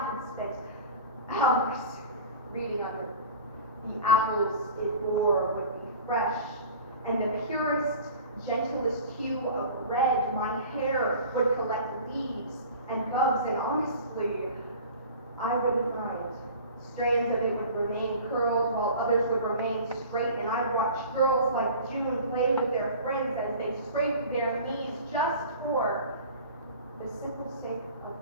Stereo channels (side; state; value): both; inverted; correlation -0.40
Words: spent hours reading under. The apples it bore would be fresh, and the purest, gentlest hue of red. My hair would collect leaves and bugs, and honestly, I wouldn't mind. Strands of it would remain curled while others would remain straight, and I'd watch girls like June play with their friends as they scraped their knees just for the simple sake of